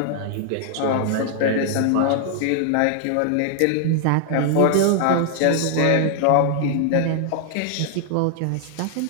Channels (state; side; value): different; both; correlation 0.00